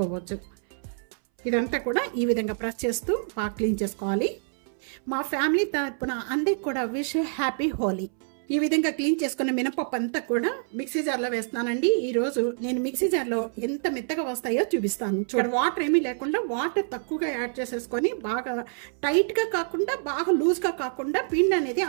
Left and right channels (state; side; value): silent; left; 60 dB below the other